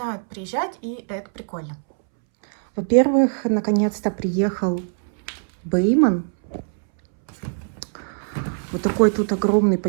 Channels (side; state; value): left; silent; 64 dB below the other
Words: приезжать, и это прикольно. Во-первых, наконец-то приехал Бейман. Вот такой тут огромный